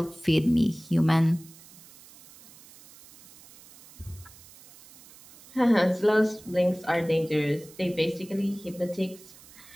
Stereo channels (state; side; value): noise; right; hiss, 22 dB below the sound